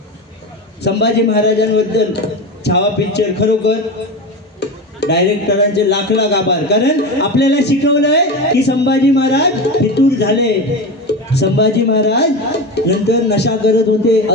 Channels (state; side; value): normal; both; correlation 0.23